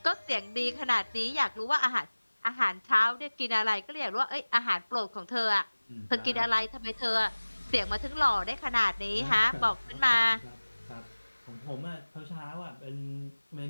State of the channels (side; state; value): both; inverted; correlation -1.00